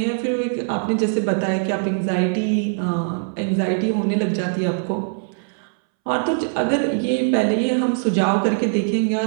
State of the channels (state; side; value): silent; left; 65 dB below the other